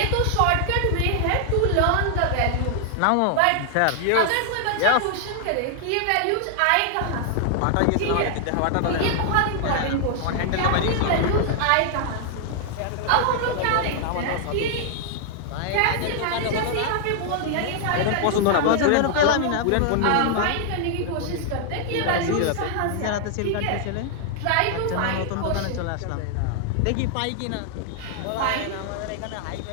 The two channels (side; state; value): both; different; correlation 0.00